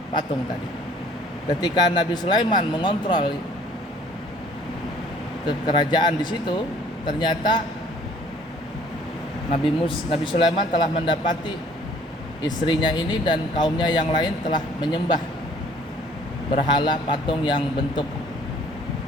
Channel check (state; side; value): normal; both; correlation 0.56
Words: Ketika Nabi Sulaiman mengontrol kerajaan di situ, ternyata Nabi Sulaiman telah mendapati istrinya ini dan kaumnya yang lain telah menyembah berhala patung yang bentuk